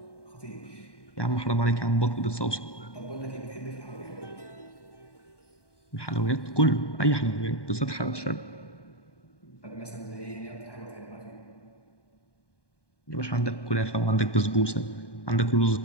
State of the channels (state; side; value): late; right; 1.2 ms